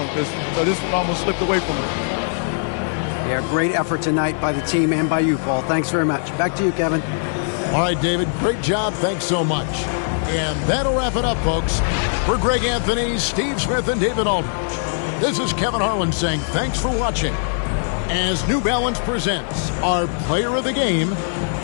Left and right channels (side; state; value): right; silent; digital silence